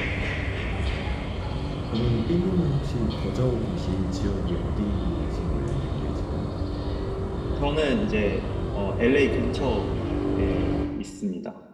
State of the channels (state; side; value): identical; both; correlation 1.00